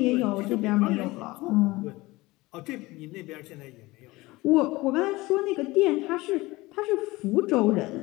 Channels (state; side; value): quieter; right; 20.8 dB